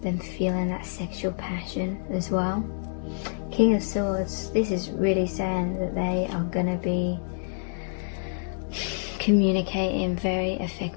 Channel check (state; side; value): silent; right; digital silence